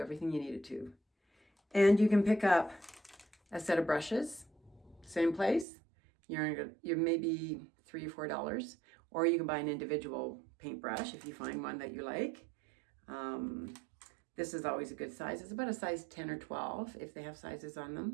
you need it to. And you can pick up a set of brushes, same place. You're maybe $3 or $4, or you can buy an individual paintbrush if you find one that you like. This is always a good size. It's about a size 10 or 12 if they have sizes on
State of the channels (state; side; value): drops out; left; at 5.7 s